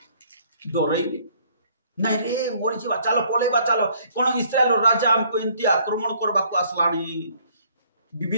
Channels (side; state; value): both; inverted; correlation -0.62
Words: डरैले नहीं रे मोरी जीवा चलो पळेबा चलो कोन इस्राएल राजा हमको एंती आक्रमण करबा को आसलानी